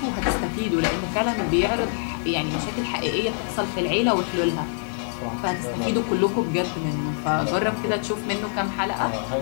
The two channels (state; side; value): silent; right; digital silence